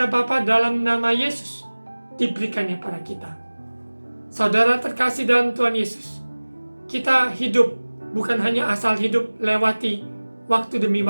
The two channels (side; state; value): both; inverted; correlation -1.00